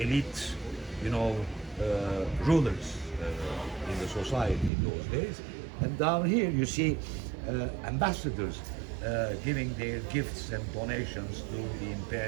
rulers in the society in those days. And down here you see ambassadors giving their gifts and donations to the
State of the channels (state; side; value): drops out; left; at 4.7 s